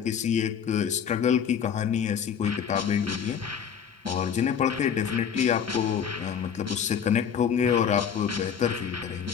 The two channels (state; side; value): quieter; right; 7.7 dB